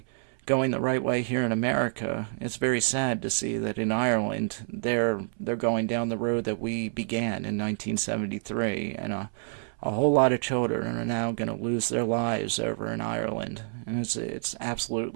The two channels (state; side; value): silent; left; 59 dB below the other